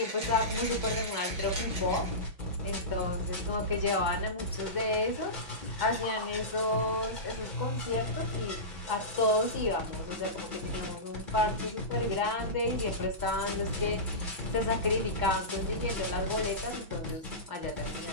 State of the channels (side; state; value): left; late; 6.1 ms